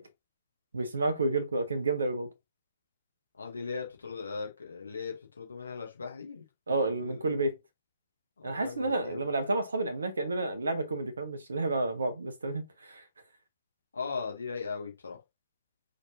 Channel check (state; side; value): inverted; both; correlation -0.72